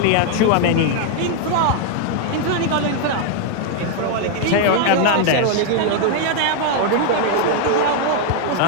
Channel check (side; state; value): both; different; correlation 0.00